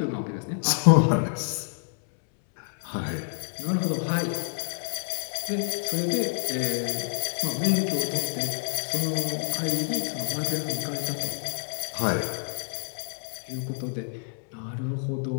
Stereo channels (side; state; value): right; silent; 59 dB below the other